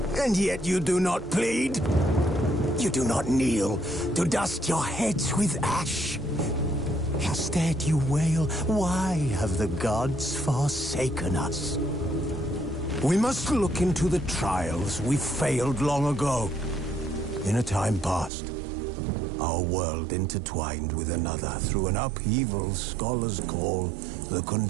And yet you do not plead. You do not kneel to dust your heads with ash. Instead you wail, why have the gods forsaken us? We must look into the trials we failed long ago. In a time past, our world intertwined with another through an upheaval scholars call the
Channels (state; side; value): drops out; left; at 18.3 s